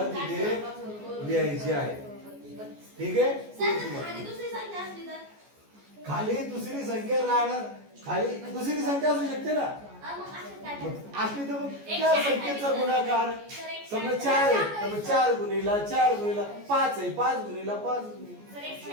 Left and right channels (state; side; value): late; left; 14 ms